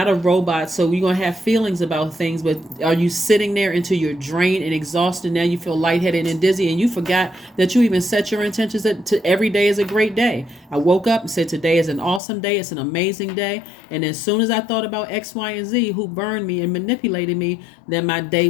a robot, so you're going to have feelings about things, but are you sitting there until you're drained and exhausted? Now you feel lightheaded and dizzy, and you forgot that you even set your intentions to every day is a great day. I woke up and said today is an awesome day, it's an amazing day, and as soon as I thought about X, Y, and Z who burned me and manipulated me, then my day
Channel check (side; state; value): right; drops out; at 12.2 s